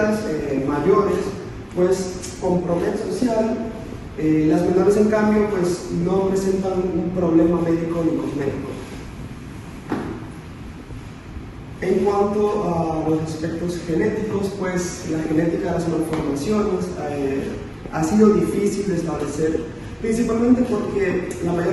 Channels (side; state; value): both; identical; correlation 1.00